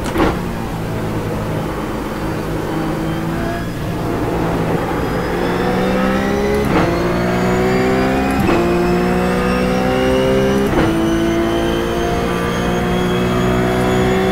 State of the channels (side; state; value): both; identical; correlation 1.00